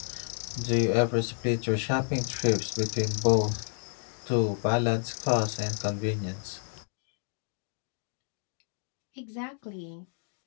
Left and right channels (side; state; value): right; silent; 58 dB below the other